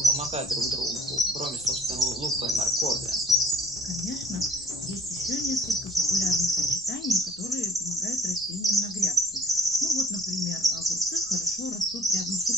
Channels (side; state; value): left; noise; rumble, 25 dB below the sound